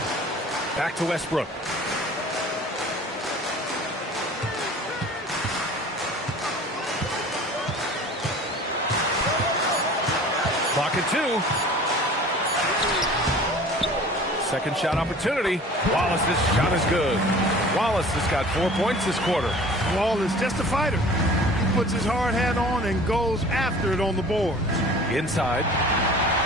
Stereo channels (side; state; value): both; normal; correlation 0.45